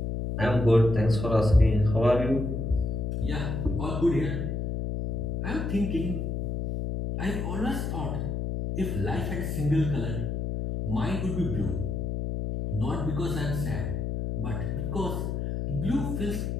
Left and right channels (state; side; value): noise; left; hum, 2 dB below the sound